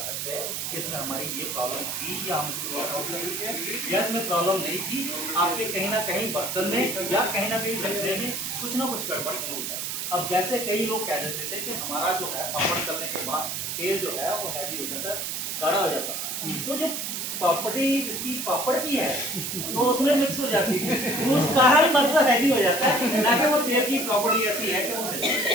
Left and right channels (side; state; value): right; noise; hiss, 3 dB below the sound